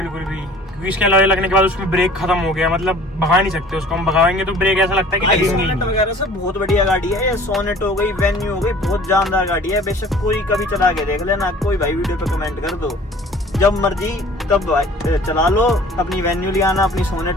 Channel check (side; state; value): both; normal; correlation 0.49